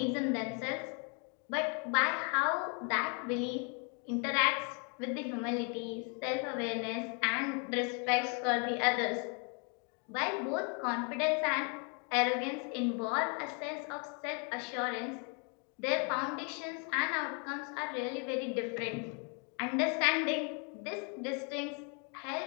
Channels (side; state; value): right; quieter; 37.2 dB